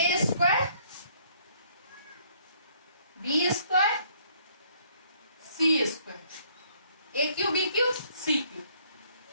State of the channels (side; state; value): both; inverted; correlation -0.64